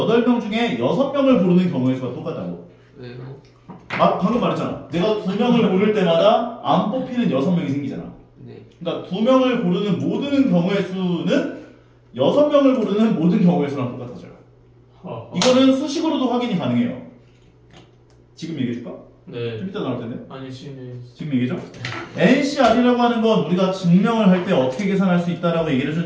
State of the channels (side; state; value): both; identical; correlation 1.00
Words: 중에 6명을 고르는 경우의 수가 똑같다고. 왜요? 아, 방금 말했잖아. 내가 2명을 고를 때마다 안 뽑히는 6명이 생기잖아. 네. 그러니까 2명을 고르는 모든 경우의 수는 6명을 고르는 모든 경우의 수랑 똑같아져요. 이거는 수식으로도 확인이 가능해요. 지금 얘기해줄까? 네. 좀 이따 나올 텐데. 아니 지금 얘기죠? NCR이라고 하는 건 우리가 증명을 할 때 어떻게 계산할 수 있다라고 얘기를